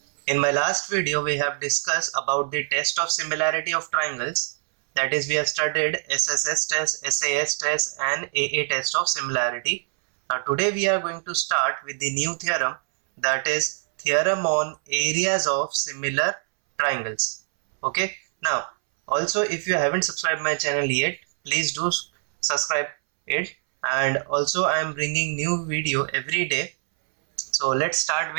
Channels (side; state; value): left; silent; 62 dB below the other